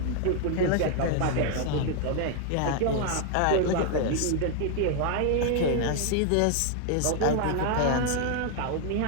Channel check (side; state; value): both; different; correlation 0.00